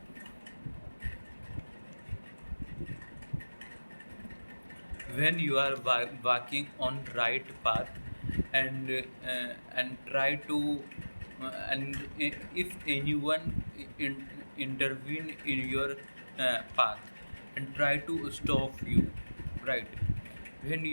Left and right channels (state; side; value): inverted; both; correlation -1.00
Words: When you are walking on right path, and try to if anyone intervene in your path and try to stop you, right? When